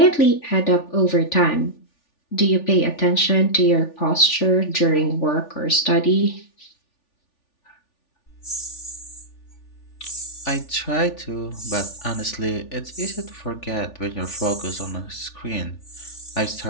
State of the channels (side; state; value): right; late; 3.4 ms